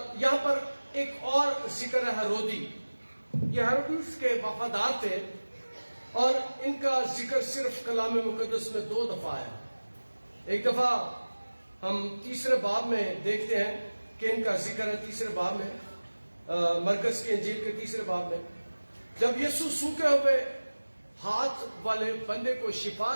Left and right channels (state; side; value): inverted; both; correlation -1.00